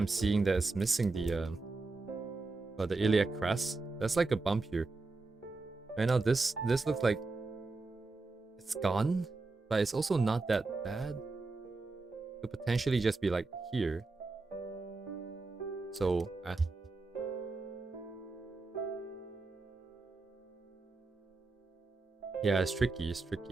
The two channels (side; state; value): left; quieter; 3.6 dB